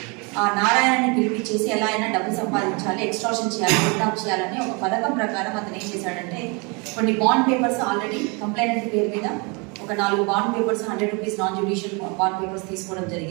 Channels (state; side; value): quieter; left; 30.9 dB